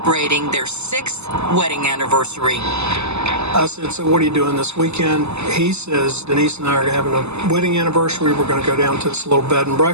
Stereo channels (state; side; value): late; left; 0.80 ms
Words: their 6th wedding anniversary. I said, so what are you doing this weekend? He says, Denise and I are having a wedding anniversary. We're going to go down to this little bed and